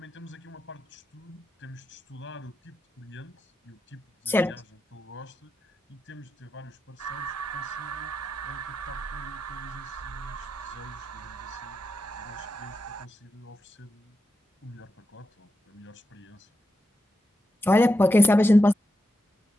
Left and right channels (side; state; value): both; normal; correlation 0.87